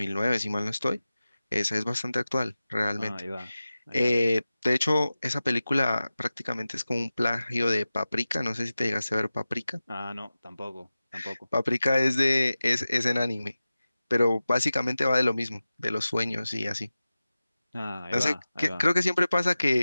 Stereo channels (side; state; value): both; inverted; correlation -0.95